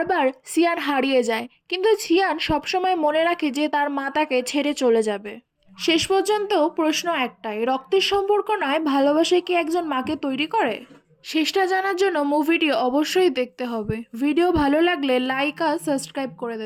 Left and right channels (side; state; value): both; identical; correlation 1.00